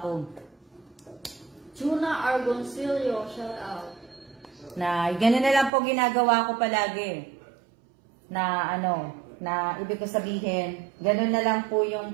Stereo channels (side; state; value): left; drops out; at 5.7 s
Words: Tuna Argoncillo, shout out. Ganun na lang po ginagawa ko palagi. Na ibig ko sabihin, ganun na lang po yung